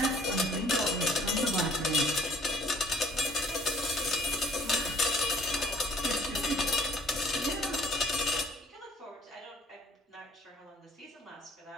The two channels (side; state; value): both; normal; correlation 0.57